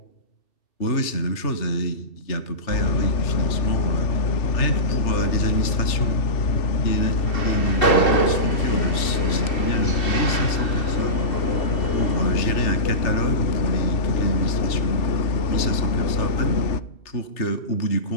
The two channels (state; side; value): late; right; 2.7 ms